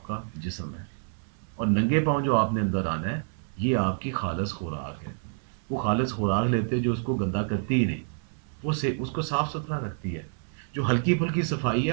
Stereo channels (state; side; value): silent; left; 59 dB below the other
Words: کا جسم ہے, اور ننگے پاؤں جو آپ نے اندر آنا ہے یہ آپ کی خالص خوراک ہے. وہ خالص خوراک لیتے جو اس کو گندا کرتی ہی نہیں, وہ اس کو صاف ستھرا رکھتی ہے. جو ہلکی پھلکی صفائی ہے